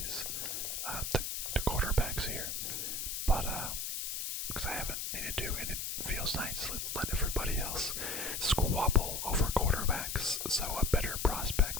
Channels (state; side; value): noise; left; hiss, 3 dB below the sound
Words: the quarterbacks here, but because I haven't needed to, and it feels nice. Let's let everybody else squabble over quarterbacks so a better